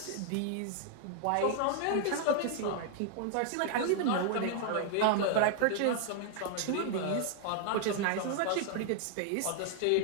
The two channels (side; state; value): both; different; correlation 0.00